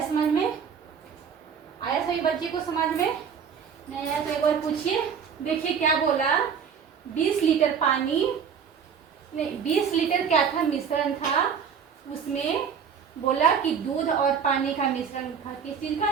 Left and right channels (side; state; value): left; quieter; 7.0 dB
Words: समझ में, आया सभी बच्चे को समझ में नहीं आया तो एक बार पूछिए। देखिए क्या बोला, 20 लीटर पानी नहीं 20 लीटर क्या था मिश्रण था, उसमें बोला कि दूध और पानी का मिश्रण था। किस चीज